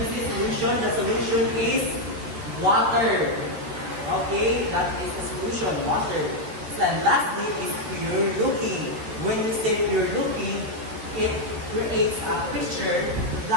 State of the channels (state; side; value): late; left; 13 ms